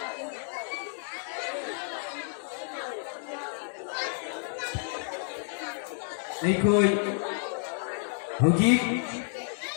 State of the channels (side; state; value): right; silent; 58 dB below the other